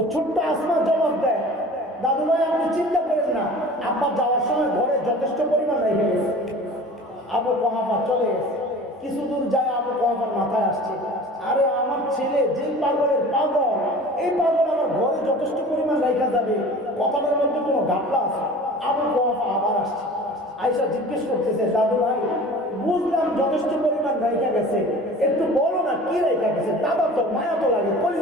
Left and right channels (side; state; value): both; normal; correlation 0.41